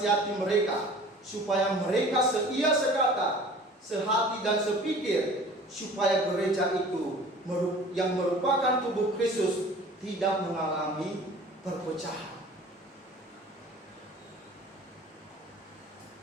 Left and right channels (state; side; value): normal; both; correlation 0.46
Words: mereka supaya mereka seia sekata, sehati dan sepikir, supaya gereja itu yang merupakan tubuh Kristus tidak mengalami perpecahan.